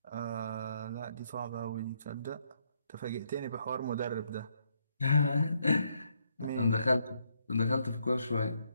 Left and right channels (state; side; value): inverted; both; correlation -0.74